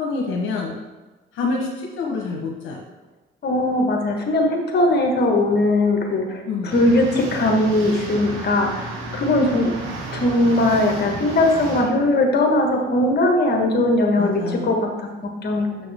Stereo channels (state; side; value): normal; both; correlation 0.42